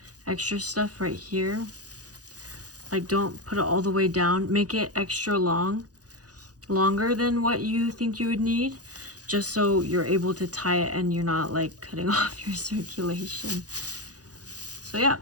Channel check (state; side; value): late; left; 0.68 ms